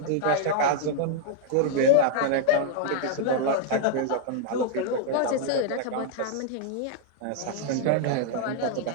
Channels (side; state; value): both; different; correlation -0.01